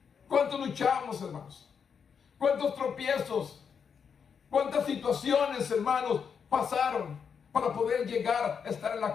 ¿Cuánto luchamos, hermanos? ¿Cuántos tropiezos? ¿Cuántas situaciones, hermanos, pasaron para poder llegar a estar en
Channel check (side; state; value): right; quieter; 6.7 dB